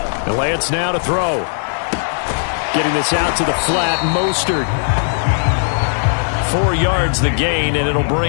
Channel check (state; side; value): silent; right; 68 dB below the other